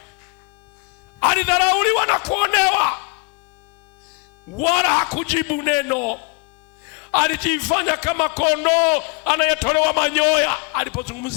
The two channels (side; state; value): right; quieter; 31.5 dB